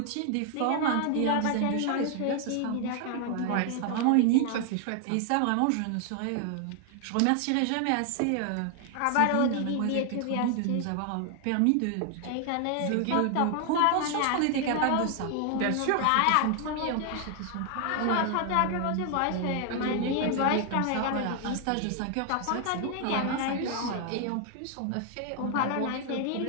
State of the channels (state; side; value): different; both; correlation 0.00